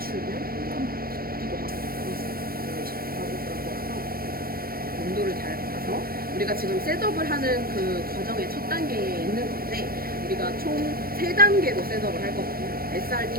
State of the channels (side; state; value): left; late; 0.43 ms